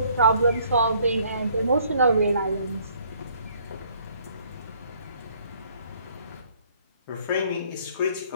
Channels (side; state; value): both; inverted; correlation -0.62